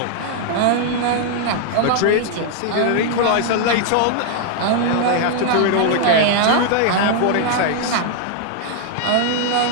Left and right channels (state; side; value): different; both; correlation 0.00